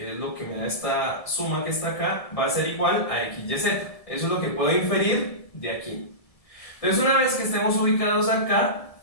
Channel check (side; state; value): right; late; 1.7 ms